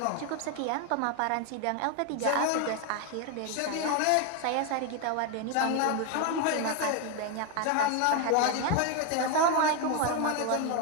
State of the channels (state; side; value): different; both; correlation 0.01